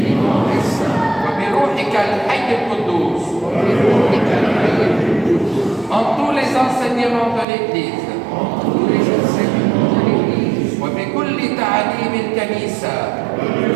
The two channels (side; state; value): left; drops out; at 7.5 s